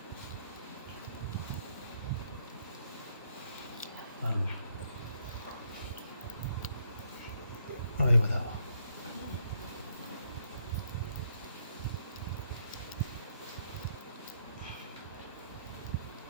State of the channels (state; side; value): inverted; both; correlation -0.72